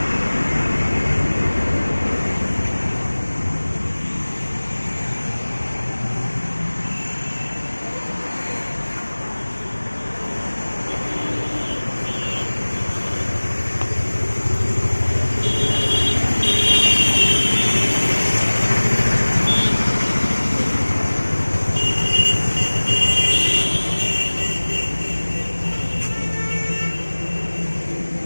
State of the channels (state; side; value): inverted; both; correlation -1.00